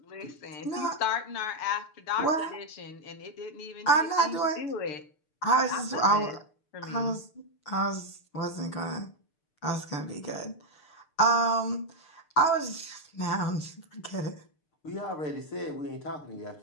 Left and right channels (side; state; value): right; late; 6.7 ms